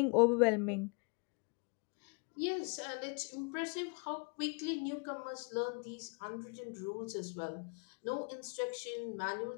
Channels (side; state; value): right; quieter; 34.8 dB